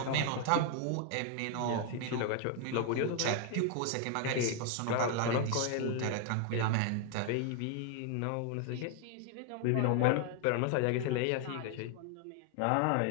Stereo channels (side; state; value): both; different; correlation 0.00